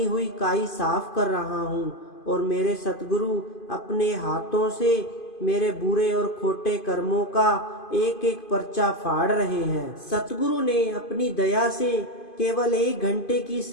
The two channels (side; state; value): right; late; 2.5 ms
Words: हुई काई साफ कर रहा हूँ और मेरे सतगुरु अपने हाथों से मेरे बुरे और खोटे कर्मों का एक एक पर्चा फाड़ रहे हैं। सतगुरु ने अपनी दया से केवल 1 घंटे की